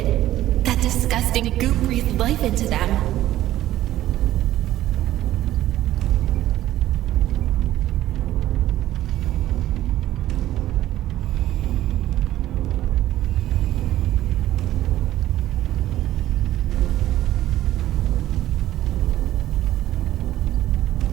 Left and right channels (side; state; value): left; quieter; 13.9 dB